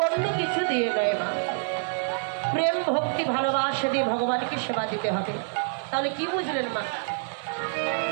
অন্য কিছু দিয়ে নয় মা। প্রেম ভক্তি ভালোবাসা দিয়ে ভগবানকে সেবা দিতে হবে। তাহলে কি বুঝলেন মা?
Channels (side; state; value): left; silent; digital silence